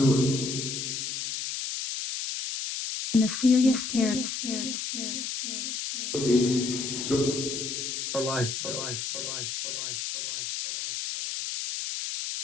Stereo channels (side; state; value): left; noise; hiss, 4 dB below the sound